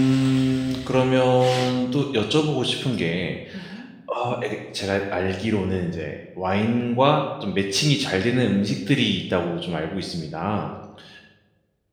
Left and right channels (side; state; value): both; identical; correlation 1.00